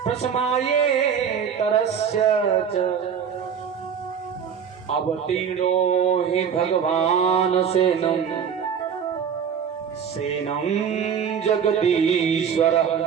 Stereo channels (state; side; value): quieter; left; 7.5 dB